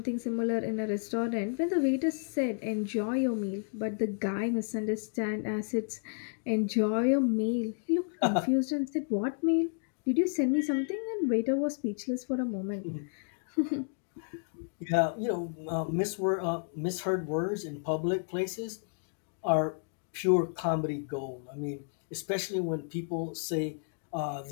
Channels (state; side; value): silent; right; digital silence